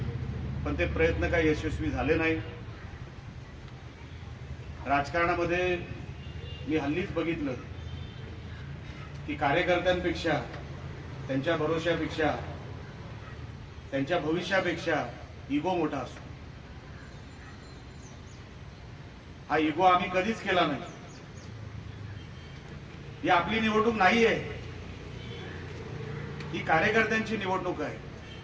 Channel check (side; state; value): both; identical; correlation 1.00